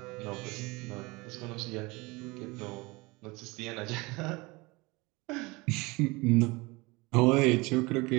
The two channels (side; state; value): left; quieter; 24.2 dB